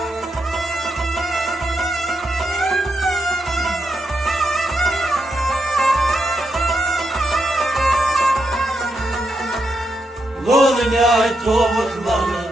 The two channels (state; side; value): normal; both; correlation 0.83